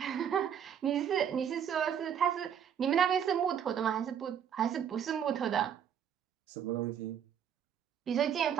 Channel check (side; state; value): left; quieter; 8.6 dB